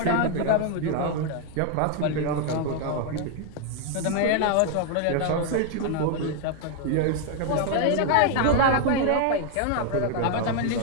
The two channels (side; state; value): both; different; correlation 0.00